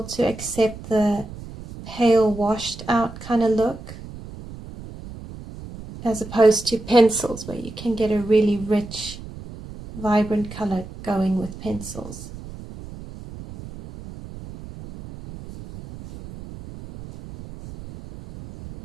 to accept the pale washed out kind of look, as opposed to pencils where you can get a really rich, vibrant color going with pencils.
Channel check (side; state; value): right; noise; rumble, 14 dB below the sound